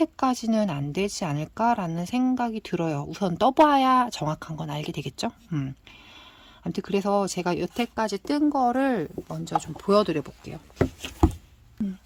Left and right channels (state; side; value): identical; both; correlation 1.00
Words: 안 되지 않을까라는 생각이 들어요. 우선 떠봐야 정확한 건 알게 되겠죠? 아무튼 그래서 제가 여태까지 뜬 거를 먼저 좀 보여드려 볼게요.